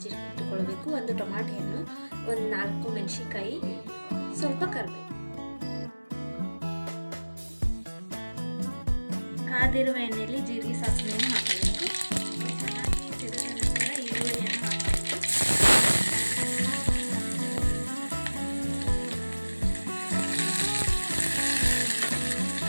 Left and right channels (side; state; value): both; inverted; correlation -1.00